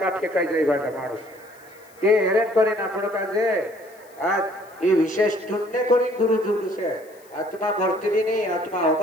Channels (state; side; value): noise; left; hiss, 27 dB below the sound